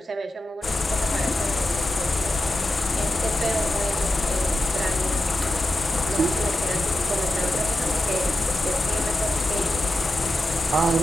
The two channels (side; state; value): both; normal; correlation 0.90